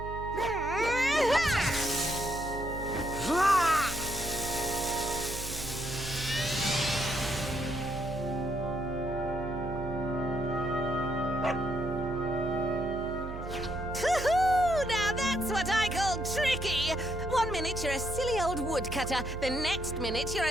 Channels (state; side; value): noise; right; hum, 9 dB below the sound